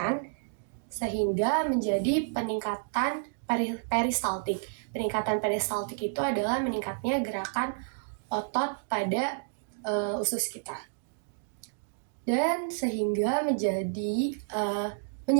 sehingga menjadi peningkatan peristaltik. Peningkatan peristaltik itu adalah meningkatnya gerakan otot pada usus kita. Dan sehingga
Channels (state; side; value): silent; left; digital silence